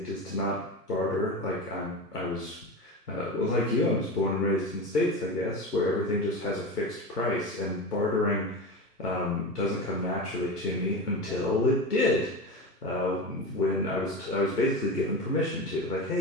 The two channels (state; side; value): normal; both; correlation 0.25